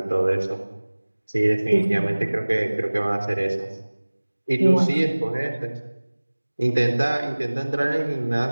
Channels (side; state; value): both; inverted; correlation -1.00